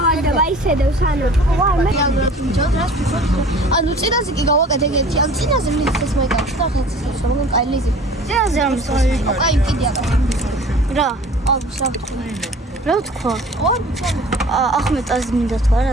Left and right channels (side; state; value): both; normal; correlation 0.46